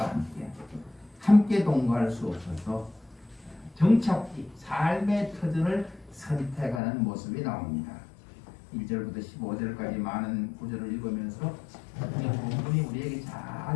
함께 동거할 수 없어서 정착지, 삶의 터전을 선택하는 모습이 나옵니다. 1절부터 15절까지 많은 구절을 읽으면서 이 본문이 우리에게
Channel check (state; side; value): drops out; right; at 6.8 s